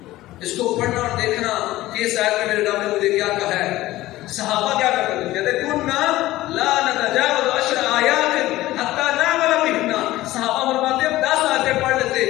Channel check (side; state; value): right; quieter; 16.6 dB